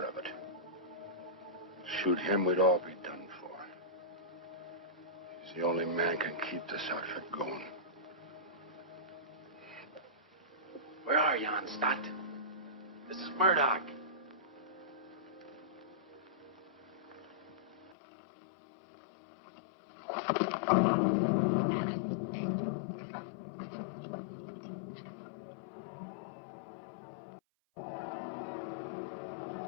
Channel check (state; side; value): drops out; right; at 17.9 s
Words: of it. Shoot him, we'd all be done for. He's the only man can keep this outfit going. Where are you, Stott? This is Murdoch.